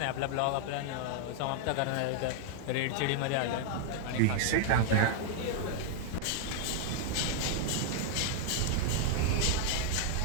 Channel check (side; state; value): both; different; correlation 0.00